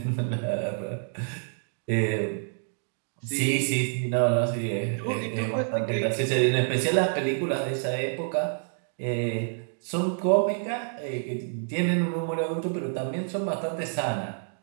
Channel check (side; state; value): left; silent; digital silence